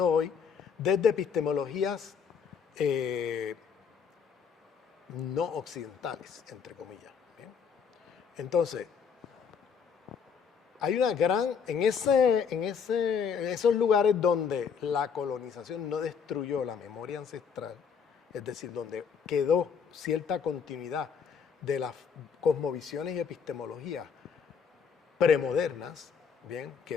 hoy desde epistemologías no occidentales, entre comillas. ¿Bien? Entonces, hay una gran, en esos lugares donde la colonización no destruyó la memoria ancestral, es decir, donde quedó cierta continuidad de las cosmovisiones y epistemologías premodernas, bien,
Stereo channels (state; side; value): quieter; right; 6.5 dB